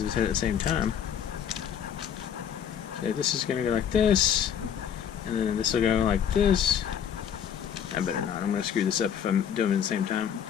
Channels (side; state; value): right; quieter; 8.7 dB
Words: his head at the same time. So this is going to go like this. And then this will go like this. I better not. I'm going to screw this up if I'm doing it at the same time.